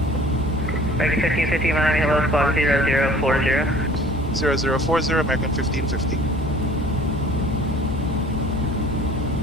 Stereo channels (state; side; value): noise; left; hum, 11 dB below the sound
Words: American 1550, Miami, hello, squawk 0040. 0040, American 1550.